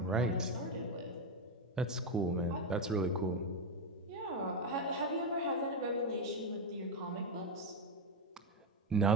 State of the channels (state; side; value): normal; both; correlation 0.07